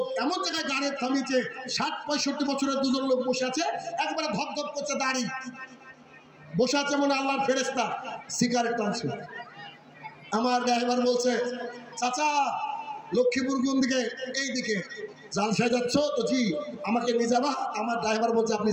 এমন জায়গায় গাড়ি থামিয়েছে, ৬০-৬৫ বছরের দুজন লোক বসে আছে, একবারে ধপধপ করছে দাড়ি, বসে আছে মনে আল্লাহর ফেরেশতা, সিগারেট টানছে। আমার ড্রাইভার বলছে, চাচা লক্ষ্মীপুর কোন দিকে? এই দিকে। জালসায় যাচ্ছ তো? জি। আমাকে নিয়ে যাবা? আমার ড্রাইভার বলছে, আপনি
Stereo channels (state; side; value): identical; both; correlation 1.00